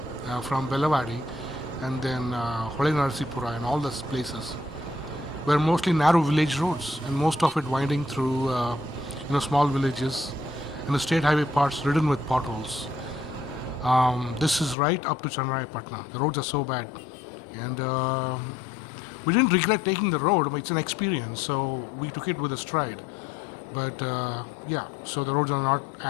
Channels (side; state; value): right; drops out; at 14.8 s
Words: from Belawadi and then Narasipura and all those places were mostly narrow village roads and most of it winding through small villages and the state highway parts ridden with potholes. This is right up to Channarayapatna. The roads are so bad and we didn't regret taking the road, but it's an experience, so we took it with a stride. But so the roads are not